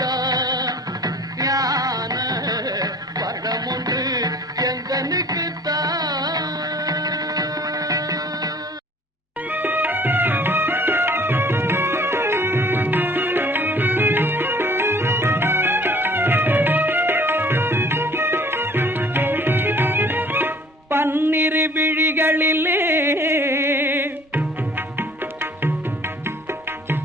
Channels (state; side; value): normal; both; correlation 0.53